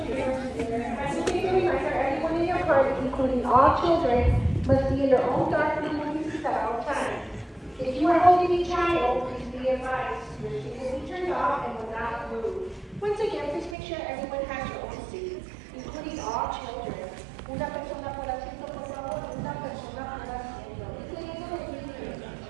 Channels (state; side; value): drops out; left; at 13.8 s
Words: Everyone in your party, including all children, must be in their own dark room at all times. If you are holding a child, please be advised. Your seat will be turned off and will not move. Once again, please make sure everyone has your own seat, including all children. Una persona por asiento, por favor, una persona por asiento. Incluyendo los niños.